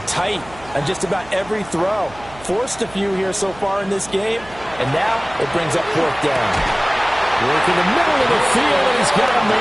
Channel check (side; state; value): right; noise; hum, 20 dB below the sound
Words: tight on just about every throw. Forced a few here so far in this game, and now it brings up 4th down. Work in the middle of the field, and he's got a